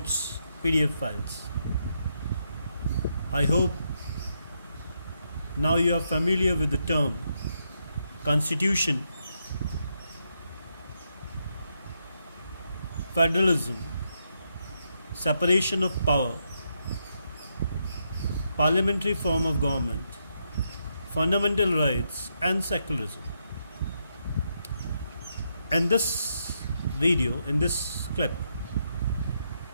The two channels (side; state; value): both; inverted; correlation -0.80